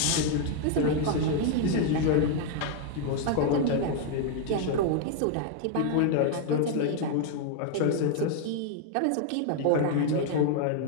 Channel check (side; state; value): both; different; correlation 0.00